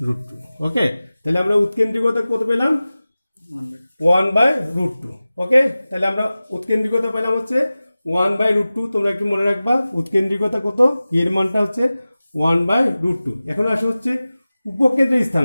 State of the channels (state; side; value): inverted; both; correlation -0.97